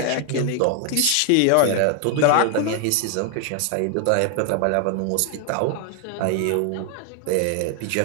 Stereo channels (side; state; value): both; different; correlation 0.00